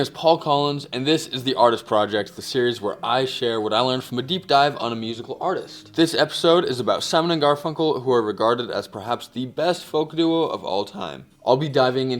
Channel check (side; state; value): both; identical; correlation 1.00